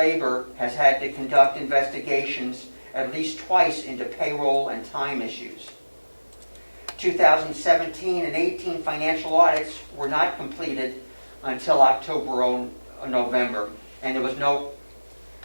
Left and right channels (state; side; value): inverted; both; correlation -1.00